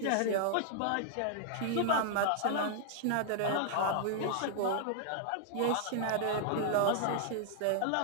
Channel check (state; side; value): different; both; correlation -0.01